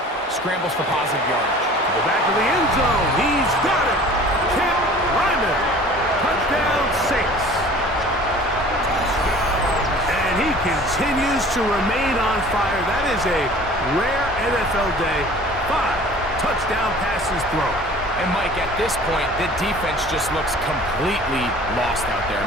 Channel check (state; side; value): normal; both; correlation 0.46